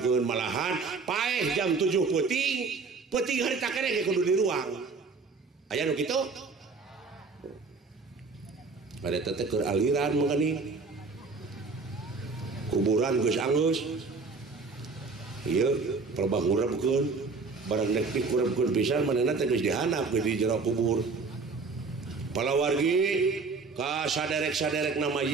malahan paeh jam 7 peuting harita keneh kudu di ruang aya nu kitu pada teteh keur aliran mangani kuburan geus anggeus ieu pelebah ngurebkeun barang nek dikurebkeun pisan manehna teh geus dihanap di jero kubur palawargi ka saderek-saderekna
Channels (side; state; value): left; quieter; 4.4 dB